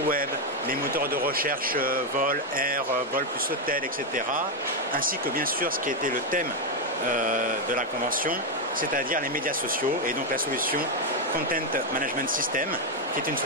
les moteurs de recherche vol, air, vol plus hôtel, etc. Ainsi que bien sûr ce qui était le thème de la convention, c'est-à-dire les médias sociaux et donc la solution Content Management System, qui est une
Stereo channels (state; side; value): normal; both; correlation 0.04